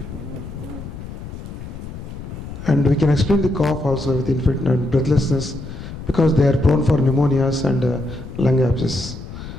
And we can explain the cough also with infection and breathlessness because they are prone for pneumonias and lung abscess.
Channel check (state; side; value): noise; left; rumble, 11 dB below the sound